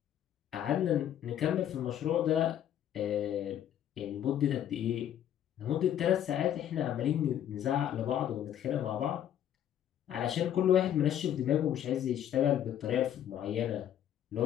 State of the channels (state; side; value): quieter; right; 10.6 dB